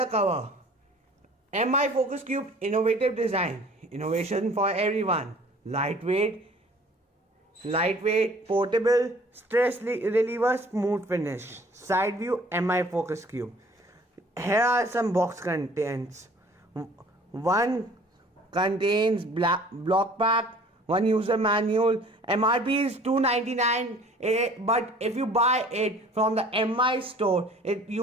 cover. MI Focus Cube innovative design, innovation for everyone. Lightweight, portable, stress reliever, smooth finish. Side view MI Focus Cube. Here are some box contents. One contains block pack, one user manual. MRP is $299, but if you buy it from the MI store,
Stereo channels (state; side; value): normal; both; correlation 0.51